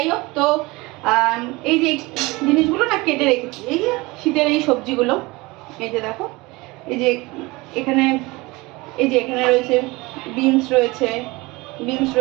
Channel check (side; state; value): left; quieter; 22.9 dB